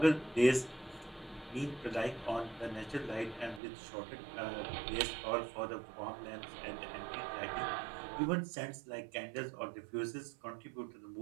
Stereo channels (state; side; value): drops out; left; at 3.6 s